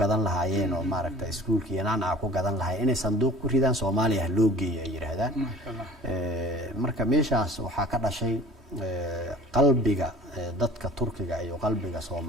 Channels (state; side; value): normal; both; correlation 0.45